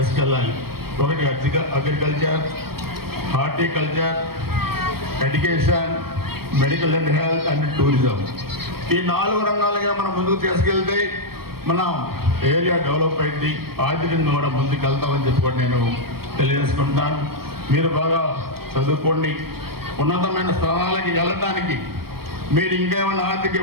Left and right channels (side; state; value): left; late; 0.94 ms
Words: ఒకటి agriculture, horticulture, education, medical and health and tourism. ఈ 4 రంగాలుగా మనం ముందుకు తీసుకెళ్తే మనం ఏరియా డెవలప్ అయింది, ఆర్థికంగా కూడా ముందుకు వెళ్తామని చెప్పుకొని నేను తెలియజేసుకుంటాను. మీరు బాగా చదువుకోండి. ఉన్నతమైన స్థానాలకి వెళ్ళటానికి మీరు ఇంకేమైనా ఆర్థిక